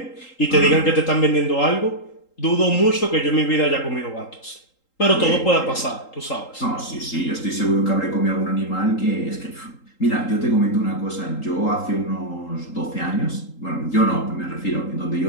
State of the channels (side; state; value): right; late; 3.8 ms